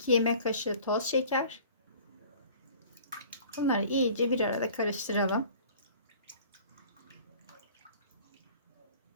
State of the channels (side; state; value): both; inverted; correlation -0.47